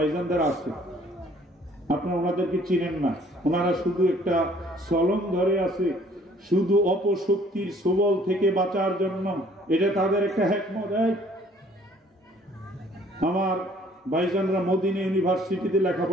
আছে। আপনারা ওনাদেরকে চিনেন না, ওনারা শুধু একটা সলং ধরে আছে, শুধু অপশক্তির সবল থেকে বাঁচার জন্য। এটা তাদের একটা হিকমত। আমার ভাইজানরা মদিনা ইউনিভার্সিটিতে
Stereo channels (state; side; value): normal; both; correlation 0.58